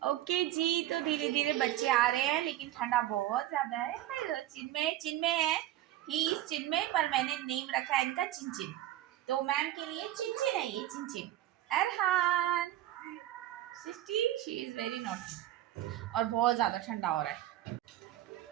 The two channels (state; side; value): quieter; left; 13.8 dB